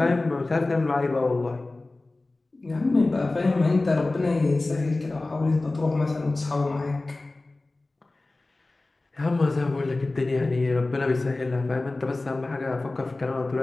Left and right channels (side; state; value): right; quieter; 3.1 dB